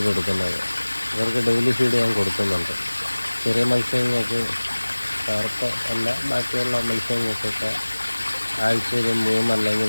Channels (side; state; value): both; inverted; correlation -1.00